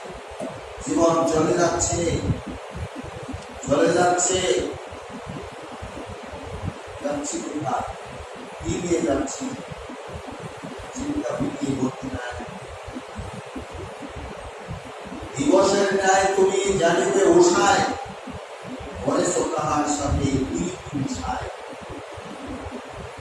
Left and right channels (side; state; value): both; identical; correlation 1.00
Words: জীবন চলে যাচ্ছে, যাচ্ছি কোথায়, কি নিয়ে যাচ্ছি, চিন্তা ভিটিয়ে ভর্তি নাই। দিবসের ন্যায় তুমি জানিবে উষায়, করেছ তাহার সাথে মিশায়।